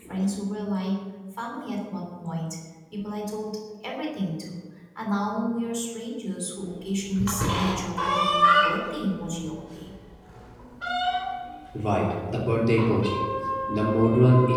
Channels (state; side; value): identical; both; correlation 1.00